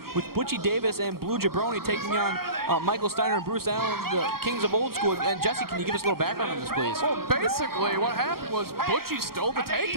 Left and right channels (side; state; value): left; late; 0.93 ms